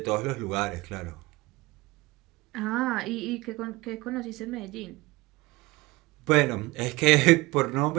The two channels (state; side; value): quieter; left; 21.6 dB